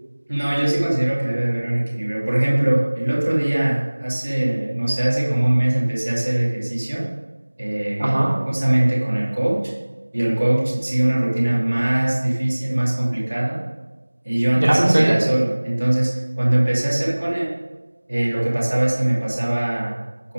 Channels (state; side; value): inverted; both; correlation -1.00